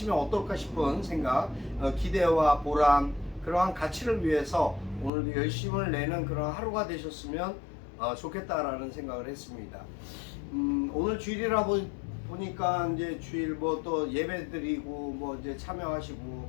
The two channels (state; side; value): drops out; right; at 5.1 s